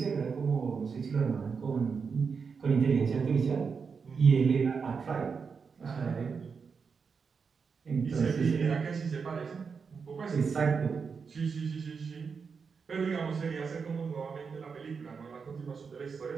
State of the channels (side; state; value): left; quieter; 5.6 dB